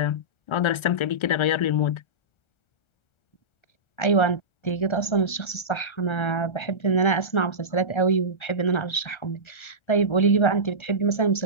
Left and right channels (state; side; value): late; right; 1.3 ms